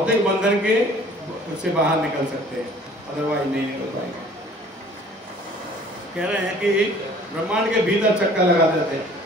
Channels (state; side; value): normal; both; correlation 0.52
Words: बंधन के से बाहर निकल सकते हैं, अदरवाइज नहीं निकल पाएंगे। कह रहे हैं कि ब्रह्मांड के भीतर चक्कर लगा देते हैं,